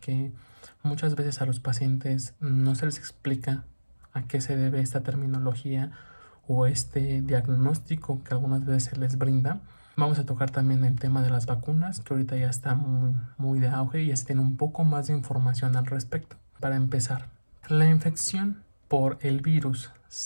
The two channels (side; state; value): both; inverted; correlation -1.00